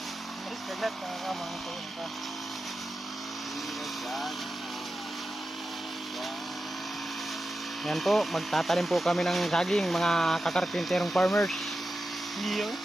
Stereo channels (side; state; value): both; normal; correlation 0.91